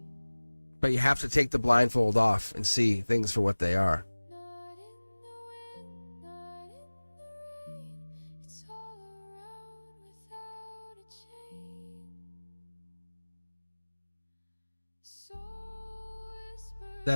But you have to take the blindfold off and see things for what they are.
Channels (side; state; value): both; inverted; correlation -1.00